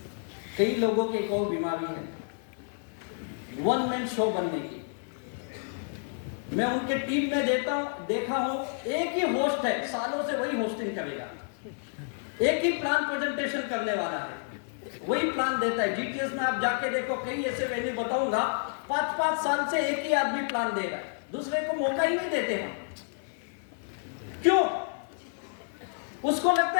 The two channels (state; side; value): silent; right; digital silence